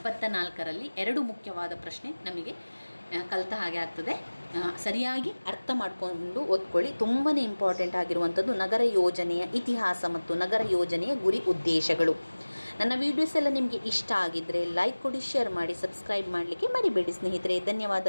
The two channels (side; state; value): both; inverted; correlation -1.00